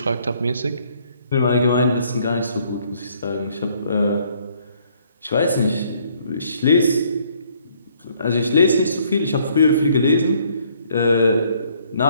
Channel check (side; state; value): both; inverted; correlation -0.65